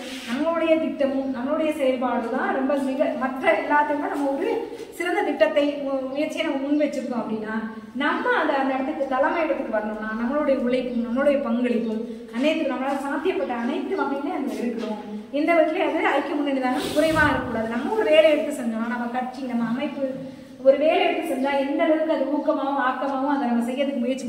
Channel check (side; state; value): both; identical; correlation 1.00